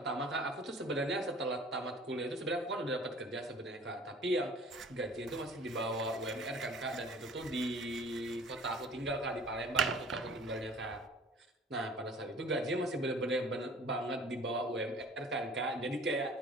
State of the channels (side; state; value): both; normal; correlation 0.49